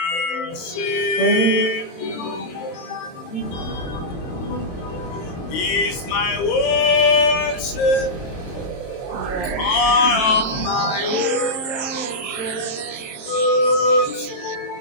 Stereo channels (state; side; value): late; right; 23 ms